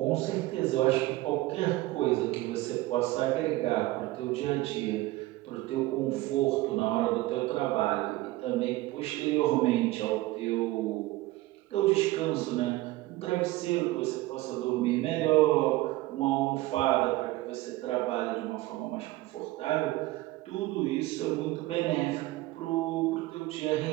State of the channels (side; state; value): left; quieter; 18.4 dB